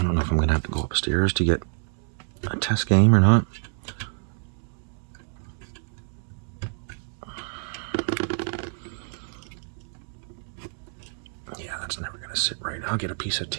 don't know if I'm going to have to go upstairs to get a test game or not. Yeah, that's never going to sit right. I'll get a piece of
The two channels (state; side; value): silent; left; 60 dB below the other